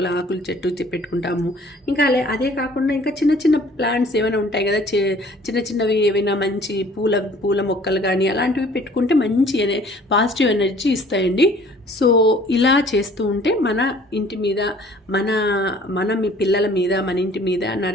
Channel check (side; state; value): both; normal; correlation 0.53